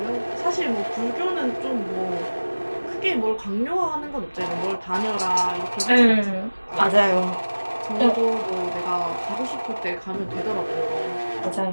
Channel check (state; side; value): inverted; both; correlation -1.00